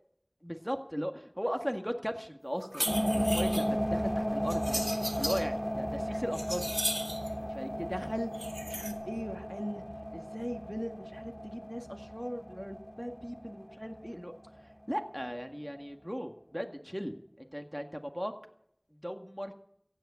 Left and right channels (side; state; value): both; identical; correlation 1.00